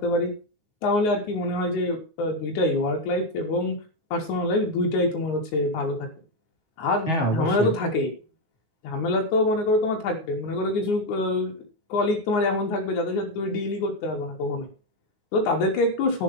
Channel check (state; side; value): late; right; 9.7 ms